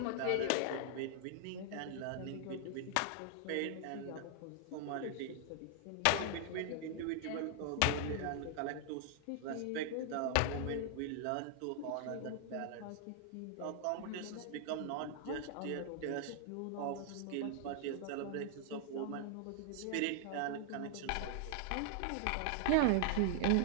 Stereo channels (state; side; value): different; both; correlation 0.00